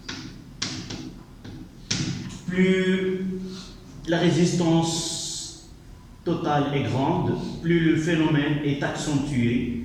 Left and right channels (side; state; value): both; identical; correlation 1.00